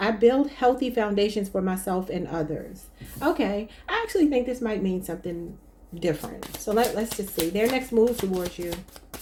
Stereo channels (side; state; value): both; identical; correlation 1.00